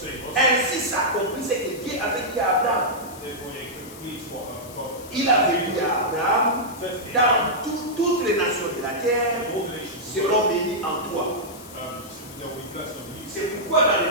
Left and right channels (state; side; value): noise; left; hiss, 17 dB below the sound